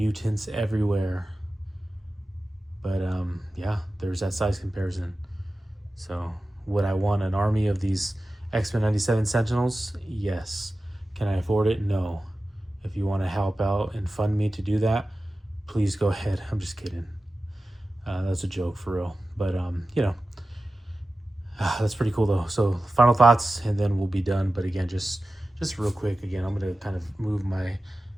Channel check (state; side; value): normal; both; correlation 0.94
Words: everywhere. But yeah, there's that size comparison. So would I want an army of these X-Men 97 Sentinels? Yes. Can I afford it? No. If you want to help out and fund me to do that, please go ahead. I'm just kidding. That's a joke for real. But you know, that's pretty cool though. So final thoughts, and then we'll be done. But again, just real quick. Again, I'm gonna kind of move my